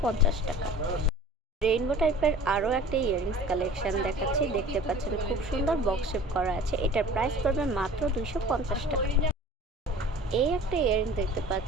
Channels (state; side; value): normal; both; correlation 0.43